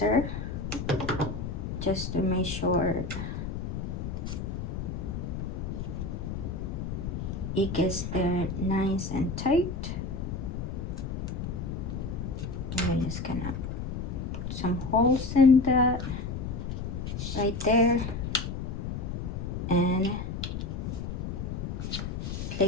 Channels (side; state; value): left; noise; rumble, 4 dB below the sound